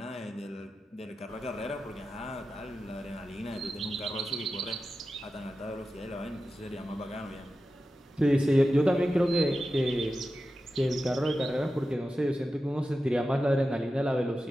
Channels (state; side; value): normal; both; correlation 0.92